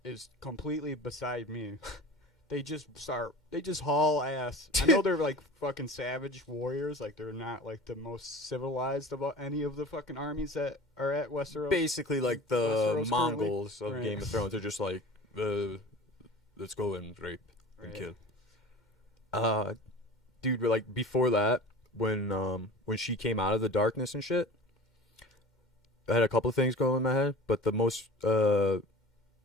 is completely beside me. They just haul ass. I know they're like fucking savage warriors. Like they're not like the most civilized of any of the fucking armies that are at Westeros. Basically, like the Westeros Mongols currently. of Right. Game of Thrones. They're just like, let's go and rape and Right. kill. Dude, like before that, when she came out of the darkness and shit, I had a couple of things going in my head, but the most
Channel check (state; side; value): normal; both; correlation 0.39